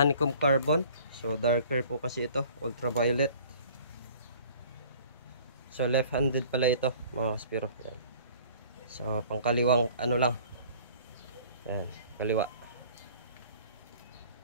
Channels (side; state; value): both; inverted; correlation -0.50